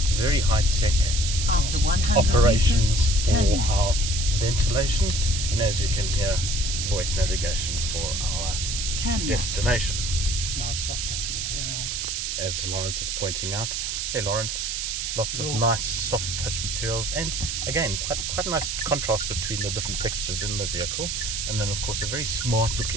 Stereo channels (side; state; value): right; noise; hiss, 2 dB below the sound